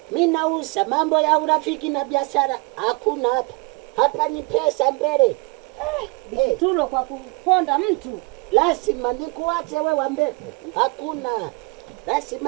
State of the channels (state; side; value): quieter; left; 29.3 dB